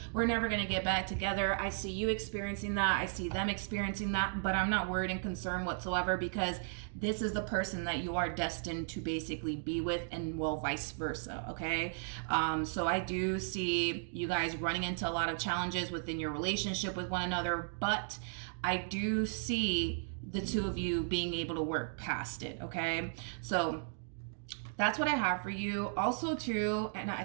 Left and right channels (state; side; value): silent; left; digital silence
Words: we're never going to get back together. I see you experiencing that, I see them experiencing that, but I'm not worried and concerned whatsoever, because this is the person that you are destined to basically be with, and well, vice versa. Okay, so I do see you guys running into a lot of challenges within your relationship with one another, but I do see the two of you being able to work past it. Okay, so that's what I have for you. Also too, and I